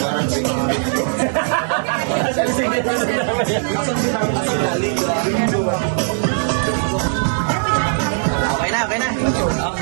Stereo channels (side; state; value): left; silent; digital silence